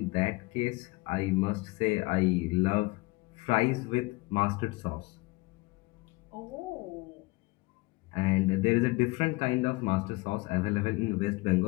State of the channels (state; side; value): quieter; right; 23.9 dB